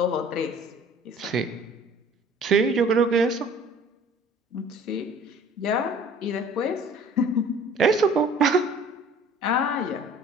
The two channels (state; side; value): normal; both; correlation 0.50